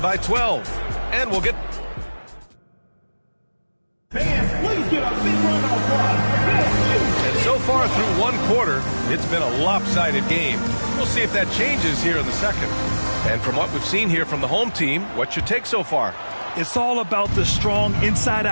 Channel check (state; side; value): inverted; both; correlation -1.00